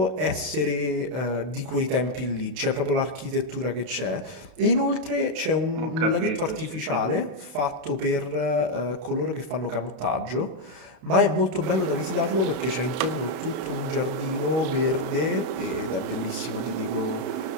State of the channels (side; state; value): left; late; 31 ms